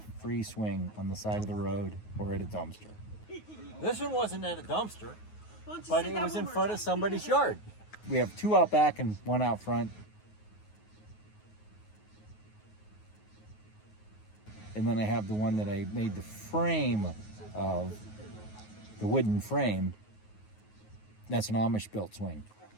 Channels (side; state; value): right; late; 9.4 ms